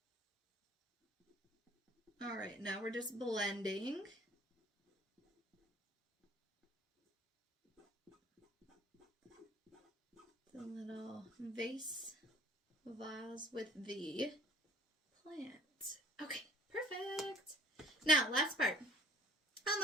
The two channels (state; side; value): normal; both; correlation 0.54